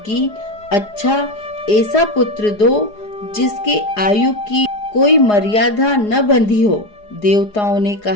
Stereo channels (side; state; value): right; late; 4.8 ms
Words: अच्छा, ऐसा पुत्र दो जिसके आयु की कोई मर्यादा न बंधी हो। देवताओं ने